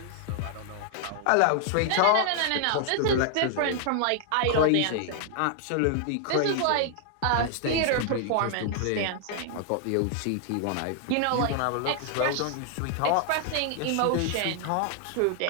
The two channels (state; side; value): different; both; correlation 0.00